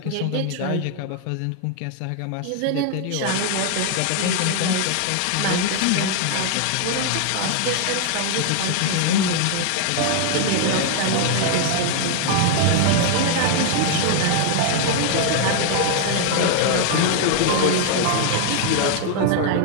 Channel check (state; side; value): different; both; correlation 0.00